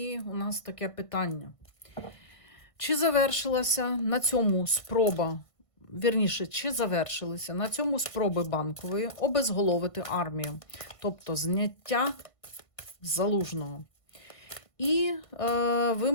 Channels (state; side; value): late; right; 1.5 ms